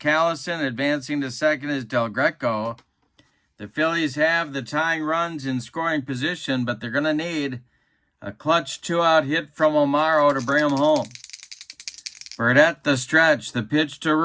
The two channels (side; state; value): both; identical; correlation 1.00